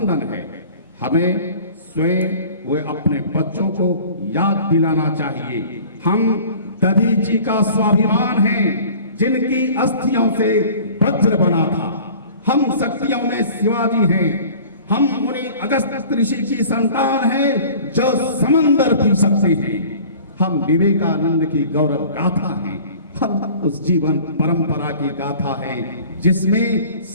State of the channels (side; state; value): both; inverted; correlation -0.45